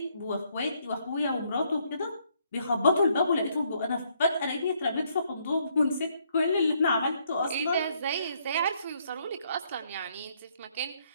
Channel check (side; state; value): both; inverted; correlation -0.70